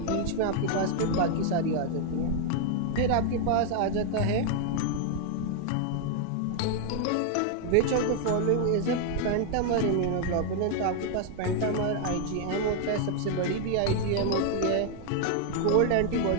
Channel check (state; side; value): different; both; correlation 0.00